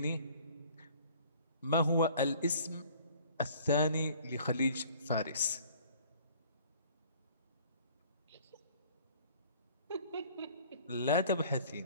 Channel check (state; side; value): inverted; both; correlation -0.53